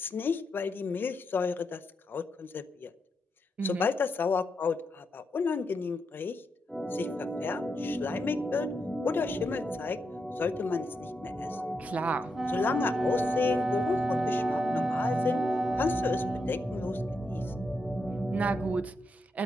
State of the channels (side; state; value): both; normal; correlation 0.84